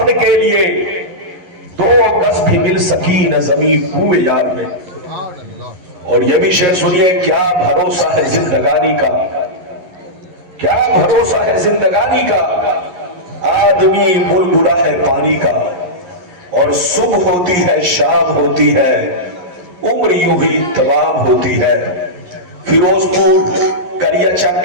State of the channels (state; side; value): late; left; 11 ms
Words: کے لیے، 2 گز بھی مل سکی نہ زمین کوئے یار میں۔ اور یہ بھی شعر سنیے، کیا بھروسہ ہے زندگانی کا، کیا بھروسہ ہے زندگانی کا، آدمی بلبلا ہے پانی کا، اور صبح ہوتی ہے شام ہوتی ہے، عمر یوں ہی تمام ہوتی ہے۔ فیروز پور کلیا چک